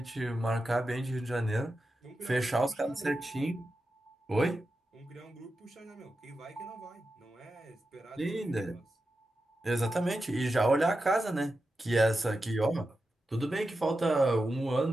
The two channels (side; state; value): both; normal; correlation 0.90